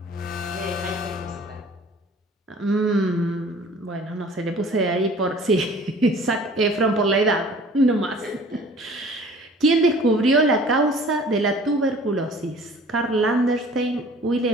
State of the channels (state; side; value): normal; both; correlation 0.48